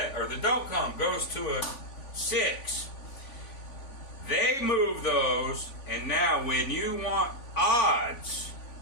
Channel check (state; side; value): late; right; 3.5 ms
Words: or the don't come goes to a 6. They move those, and now when you want odds